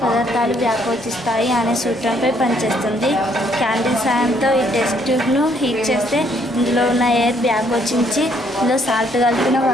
పదార్థాలు వ్యాకోచిస్తాయి అనే సూత్రంపై పనిచేస్తుంది. క్యాండిల్ సాయంతో ఈ టెస్ట్ ట్యూబ్ను హీట్ చేస్తే ఇందులో ఉన్న ఎయిర్ వ్యాకోచించి ఇందులో సాల్ట్ కలిపిన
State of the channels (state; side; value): normal; both; correlation 0.68